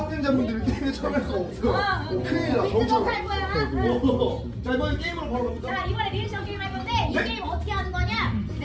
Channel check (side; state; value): both; identical; correlation 1.00